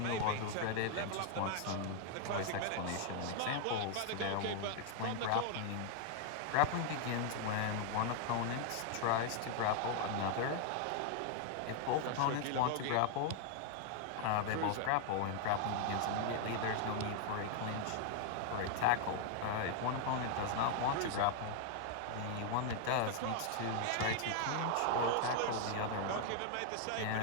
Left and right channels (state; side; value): different; both; correlation 0.00